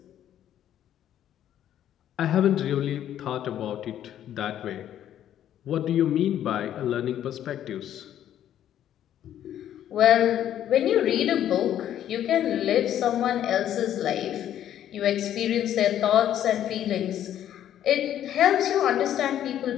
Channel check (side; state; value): right; quieter; 11.0 dB